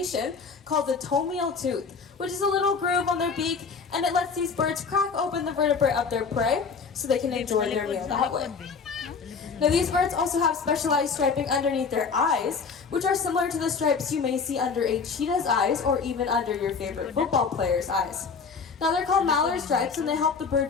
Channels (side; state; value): right; quieter; 5.3 dB